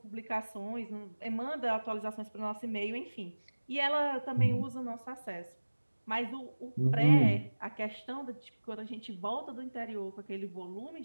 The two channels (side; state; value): both; inverted; correlation -1.00